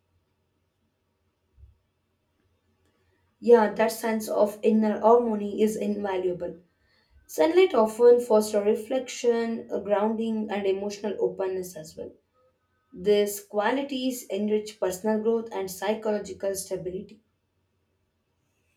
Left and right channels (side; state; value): both; identical; correlation 1.00